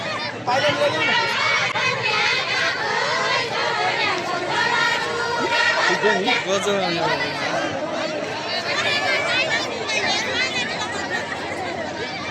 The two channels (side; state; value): both; identical; correlation 1.00